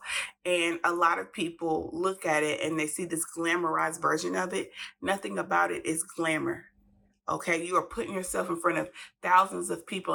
And a lot of people look at it and they see this glamorized version of it. Nothing about it is glamour. Okay, you are putting yourself in front of thousands of people.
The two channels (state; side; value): identical; both; correlation 1.00